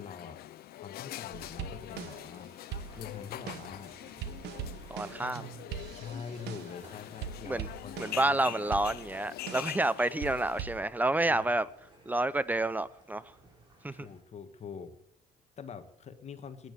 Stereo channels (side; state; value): both; normal; correlation 0.70